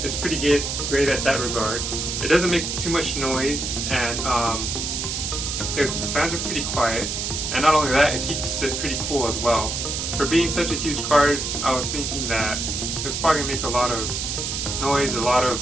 it's pretty good, great at that regard. It doesn't make too much noise, and the fans are pretty quiet, and not only that, it keeps it pretty cool as well. For being such a huge card, I was thinking that it was probably going to make a lot of noise, a lot of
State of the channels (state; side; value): noise; right; hiss, 3 dB below the sound